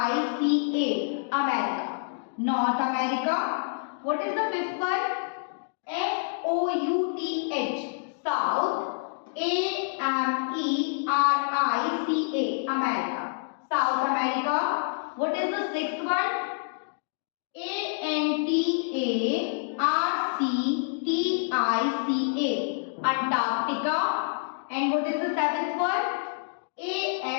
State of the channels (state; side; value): silent; right; digital silence